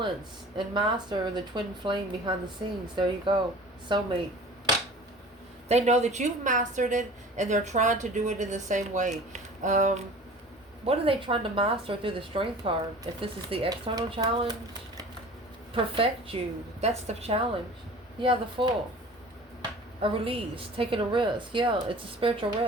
and master the twin flame behind the scenes. There you go. Soulmate. They know that you've mastered it, and they're trying to do it in the same way. What are they trying to master through the strength card? If this is the external challenge, perfect you. That's the challenge. Yeah, the Fool. A release, taking a risk. Yeah, it's a spiritual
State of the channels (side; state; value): both; normal; correlation 0.43